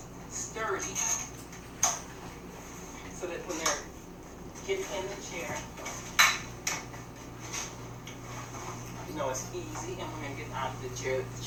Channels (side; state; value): both; identical; correlation 1.00